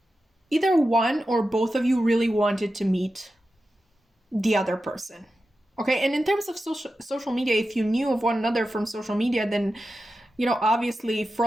either one or both of you really wanted to meet the other person. Okay, and in terms of social media, if you knew of one another from social media, then, you know, obviously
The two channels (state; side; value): normal; both; correlation 0.91